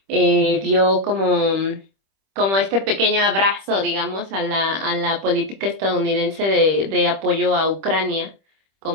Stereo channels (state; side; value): late; left; 26 ms